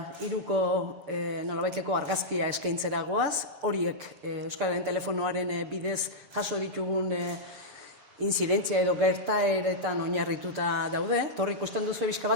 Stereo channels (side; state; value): left; late; 6.9 ms